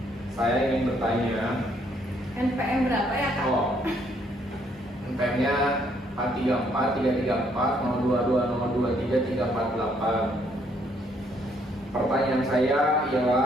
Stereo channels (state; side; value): normal; both; correlation 0.69